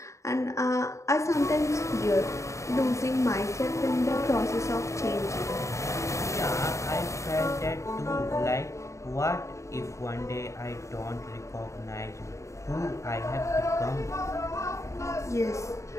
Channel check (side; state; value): right; late; 0.14 ms